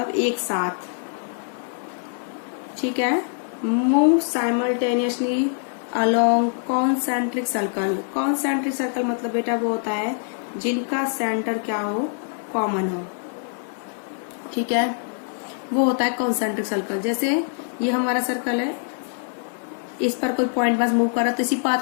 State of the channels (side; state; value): right; silent; digital silence